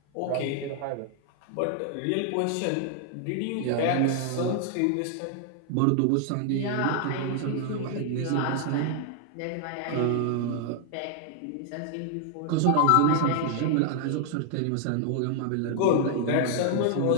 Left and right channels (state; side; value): different; both; correlation 0.00